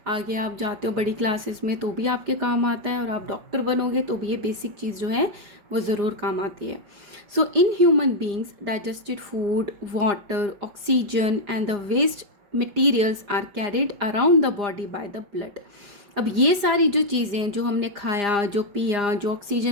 आगे आप जाते हो बड़ी क्लासेस में तो भी आपके काम आता है और आप डॉक्टर बनोगे तो भी ये बेसिक चीज़ जो है वो ज़रूर काम आती है। So in human beings digested food, water, oxygen and the waste materials are carried around the body by the blood. अब ये सारी जो चीज़ें जो हमने खाया, जो पिया, जो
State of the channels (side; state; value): left; late; 4.9 ms